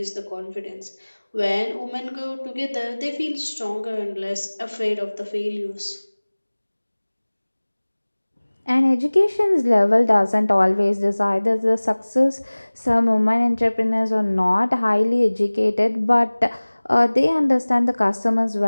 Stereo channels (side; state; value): both; inverted; correlation -1.00